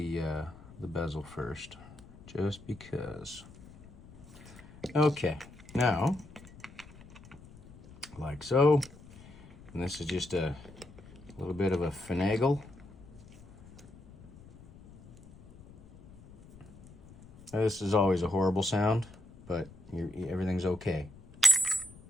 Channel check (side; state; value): left; noise; rumble, 21 dB below the sound